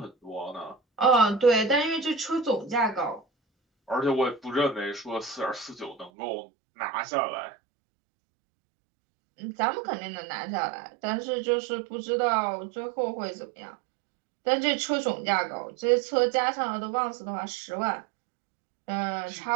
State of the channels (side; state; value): left; drops out; at 6.1 s